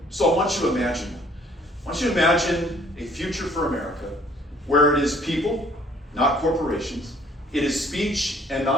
So I want you to imagine that. I want you to imagine a future for America where it is people, not corporations. It is speech and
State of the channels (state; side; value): normal; both; correlation 0.59